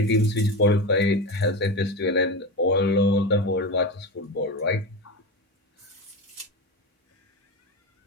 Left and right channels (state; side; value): normal; both; correlation 0.21